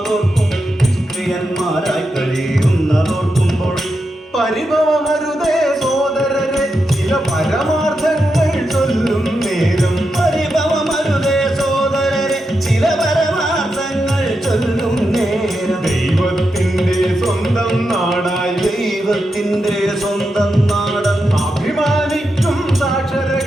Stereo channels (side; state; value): both; normal; correlation 0.87